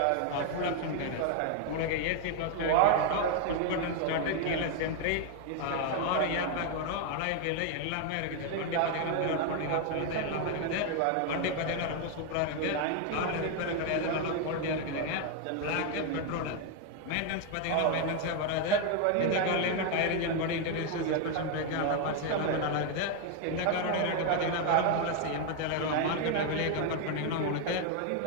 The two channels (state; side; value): different; both; correlation 0.00